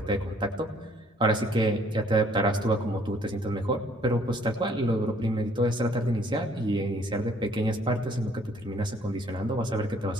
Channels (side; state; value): both; normal; correlation 0.61